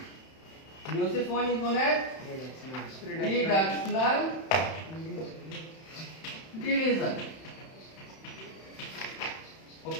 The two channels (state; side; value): late; right; 31 ms